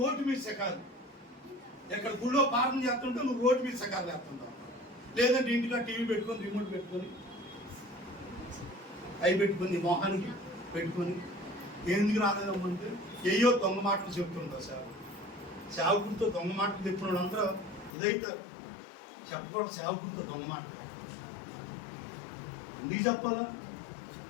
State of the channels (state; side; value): drops out; right; at 17.9 s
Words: రోడ్డు మీద సెకాలి, ఎక్కడ గుళ్ళో ప్రార్థన చేస్తుంటే నువ్వు రోడ్డు మీద సెకాలు చేస్తుంటావు. లేదంటే ఇంటిగా టీవీ పెట్టుకొని రిమోట్ పెట్టుకొని అవి పెట్టుకొని మొహానికి పెట్టుకొని ఎందుకు రాలేదమ్మంటే ఏయో దొంగ మాటలు చెప్తుంటావు. సేవకుడితో దొంగ మాటలు చెప్పిన అందరూ ఇదైతే చెప్పకూడదు. సేవకుడితో దొంగ మాటలు ఎందుకు చెప్పాలా?